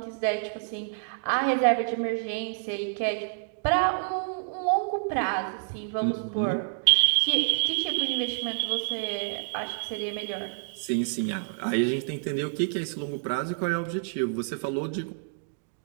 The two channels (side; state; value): left; silent; digital silence